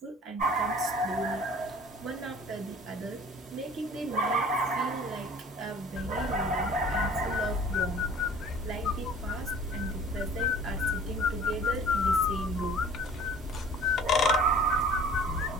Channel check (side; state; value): both; normal; correlation 0.48